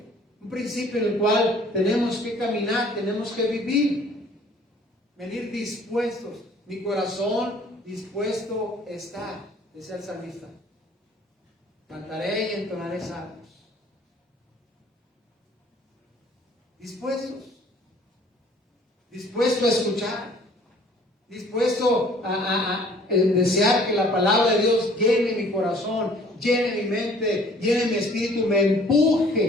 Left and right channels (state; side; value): normal; both; correlation 0.55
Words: el cual tenemos que caminar, tenemos que vivir, venir dispuestos. Mi corazón dispuesto está, decía el salmista. Cantaré y entonaré salmos. Dispuesto a escuchar, dispuesto a desear que la palabra de Dios llene mi corazón, llene mi mente, llene mi espíritu, me